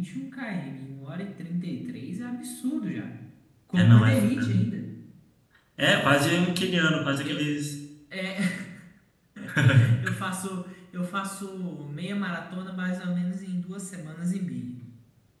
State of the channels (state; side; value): identical; both; correlation 1.00